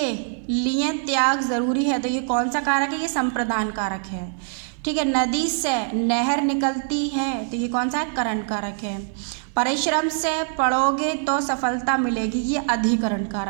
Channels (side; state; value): left; silent; digital silence